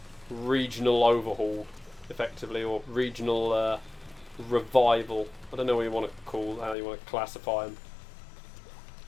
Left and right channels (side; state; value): right; drops out; at 6.8 s